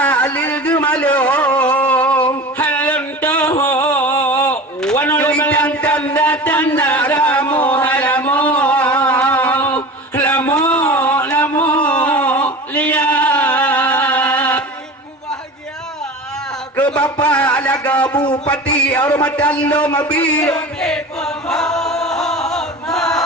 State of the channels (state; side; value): normal; both; correlation 0.34